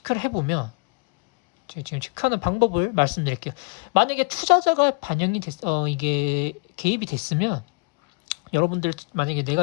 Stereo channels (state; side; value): quieter; right; 32.7 dB